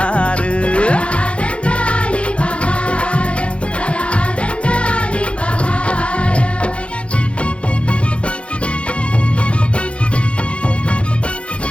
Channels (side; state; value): right; late; 0.060 ms